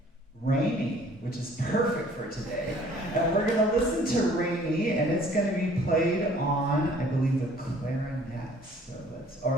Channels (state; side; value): normal; both; correlation 0.55